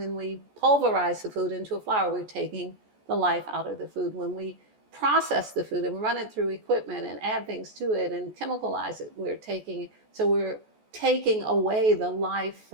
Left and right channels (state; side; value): late; left; 14 ms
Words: we pulverize the food into a flour, we're taking the life out of the food. When we process the food and run it through equipment and add things to it and chemicalize it, we're taking away the life